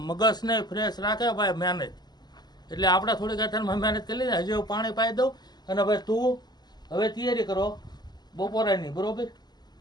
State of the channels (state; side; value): late; right; 0.20 ms